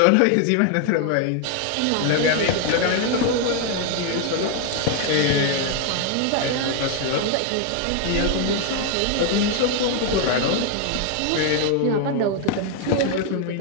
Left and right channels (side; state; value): both; different; correlation 0.01